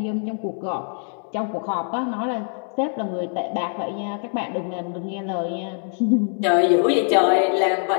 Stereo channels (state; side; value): silent; right; 55 dB below the other